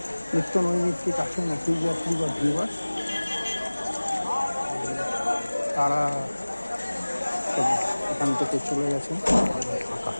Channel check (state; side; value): inverted; both; correlation -1.00